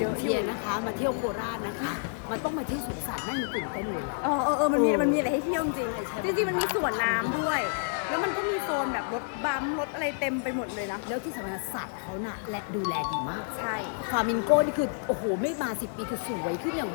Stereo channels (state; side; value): silent; right; 58 dB below the other